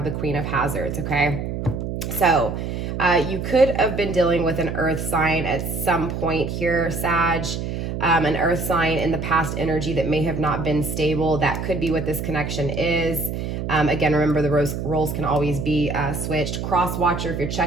the Queen of Hazards, okay? So you could have been dealing with an earth sign at some point here, Sag. An earth sign in the past energy that may have not been stable. That could be what this connection is. Again, remember, the roles can always be switched. Cross watcher, if you're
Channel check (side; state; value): right; noise; hum, 4 dB below the sound